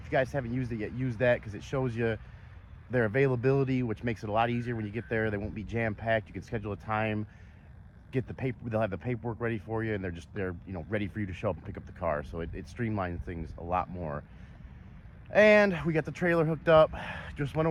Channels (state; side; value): identical; both; correlation 1.00